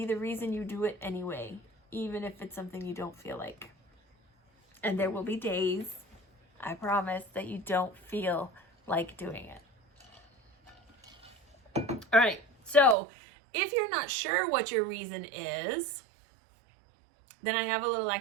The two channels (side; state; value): left; drops out; at 13.0 s